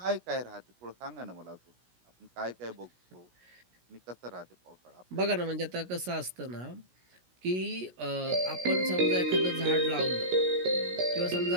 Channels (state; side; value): late; left; 17 ms